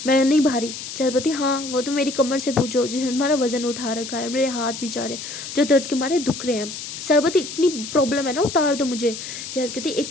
मैं नहीं भारी। सरस्वती हाँ वो तो मेरी कमर से पूछो जिसने तुम्हारा वजन उठा रखा है, मेरे हाथ भी जा रहे जो दर्द के मारे दुख रहे हैं। सरस्वती इतनी प्रॉब्लम है ना, उतार दो मुझे। जैस कहती एक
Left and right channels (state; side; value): noise; left; hiss, 9 dB below the sound